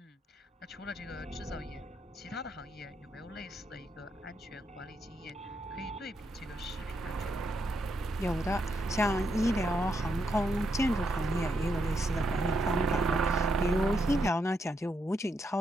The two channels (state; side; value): normal; both; correlation 0.80